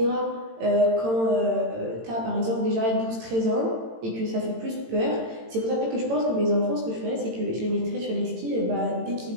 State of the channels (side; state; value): left; late; 18 ms